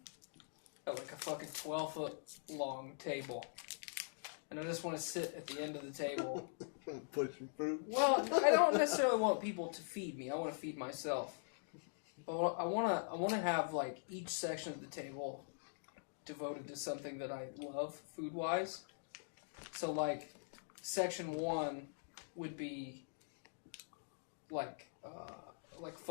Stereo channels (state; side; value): silent; right; digital silence